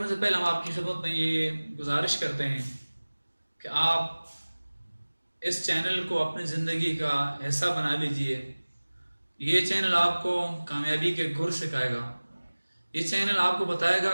سے پہلے ہم آپ کی خدمت میں یہ گزارش کرتے ہیں کہ آپ اس چینل کو اپنی زندگی کا حصہ بنا لیجئے۔ یہ چینل آپ کو کامیابی کے گر سکھائے گا۔ یہ چینل آپ کو بتائے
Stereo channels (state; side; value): inverted; both; correlation -1.00